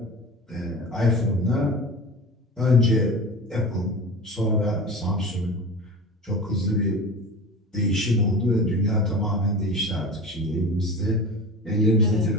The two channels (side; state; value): both; normal; correlation 0.33